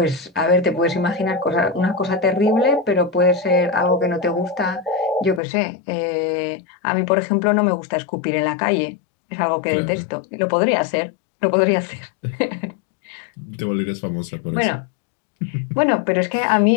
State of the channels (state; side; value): drops out; right; at 5.4 s